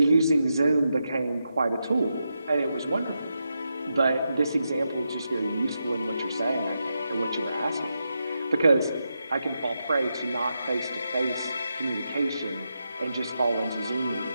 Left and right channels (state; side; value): inverted; both; correlation -0.86